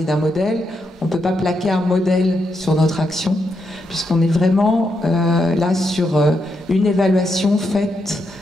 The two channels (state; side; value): normal; both; correlation 0.81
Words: d'un modèle. On ne peut pas plaquer un modèle sur notre action, puisqu'on est vraiment là sur une évaluation faite